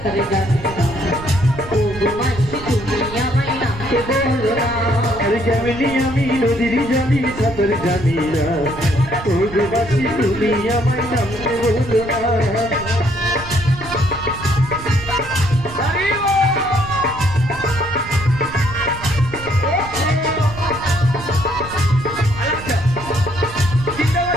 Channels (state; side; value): noise; right; rumble, 14 dB below the sound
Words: জানি না, ও গো মাসি তুমি আমায় নামতে বলো না। আরে কেমনি আমি নদীর জলে সাঁতার জানি না, ও গো মাসি তুমি আমায় নামতে বলো না।